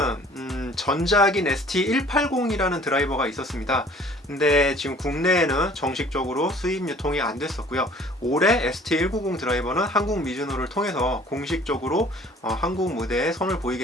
전작인 ST180이라는 드라이버가 있었습니다. 근데 지금 국내에는 정식적으로 수입 유통이 안 됐었고요. 올해 ST190 드라이버는 한국 미즈노를 통해서 공식적으로 한국 무대에 선을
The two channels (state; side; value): normal; both; correlation 0.52